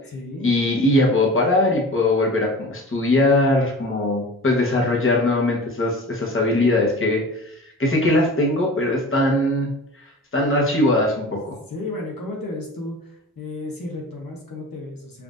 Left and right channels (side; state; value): both; normal; correlation 0.38